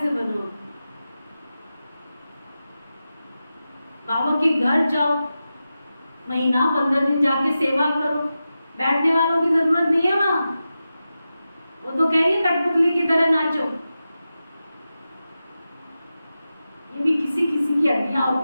बनो? बाबा के घर जाओ, महीना 15 दिन जाके सेवा करो, बैठने वालों की जरूरत नहीं है वहां। वो तो कहेंगे कठपुतली की तरह नाचो। ये भी किसी किसी की हड्डियां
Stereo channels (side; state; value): both; inverted; correlation -0.92